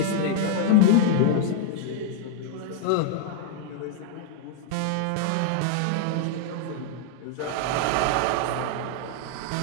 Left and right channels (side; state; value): both; different; correlation -0.01